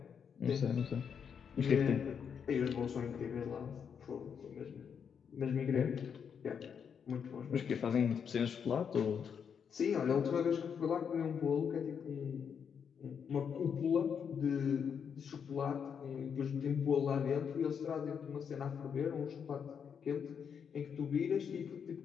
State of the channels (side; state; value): right; quieter; 7.2 dB